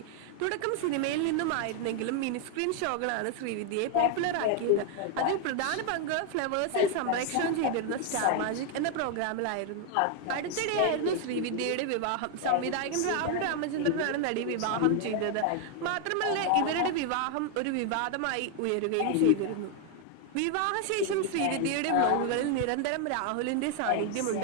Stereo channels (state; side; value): different; both; correlation 0.00